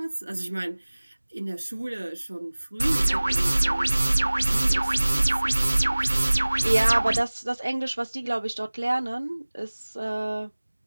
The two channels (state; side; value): inverted; both; correlation -1.00